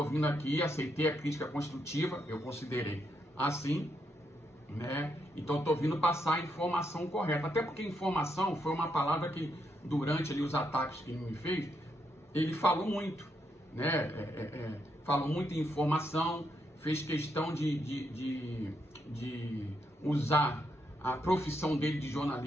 vindo aqui, aceitei a crítica construtiva, eu considerei assim, né? Então estou vindo passar a informação correta, até porque informação foi uma palavra que durante ali os ataques que ele me fez, ele falou muito, né? Falou muito em informação, fez questão de usar a profissão dele de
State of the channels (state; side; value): normal; both; correlation 0.79